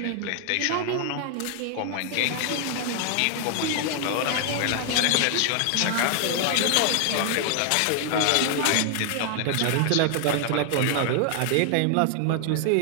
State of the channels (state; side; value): different; both; correlation 0.00